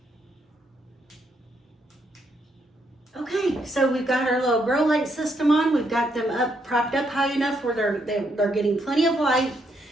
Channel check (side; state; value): both; normal; correlation 0.76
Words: Okay, so we've got our little grow light system on. We've got them propped up high enough where they're getting plenty of light.